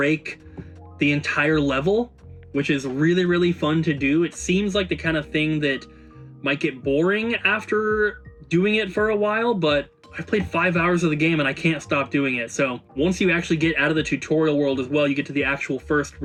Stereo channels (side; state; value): both; identical; correlation 1.00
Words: the entire level, which is really, really fun to do. It seems like the kind of thing that might get boring after doing it for a while, but I've played 5 hours of the game and I can't stop doing it. So once you actually get out of the tutorial world as well, you get to the actual first